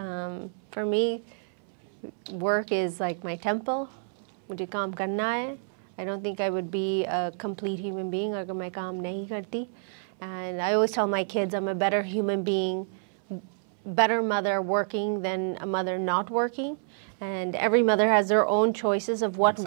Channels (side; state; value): left; silent; 59 dB below the other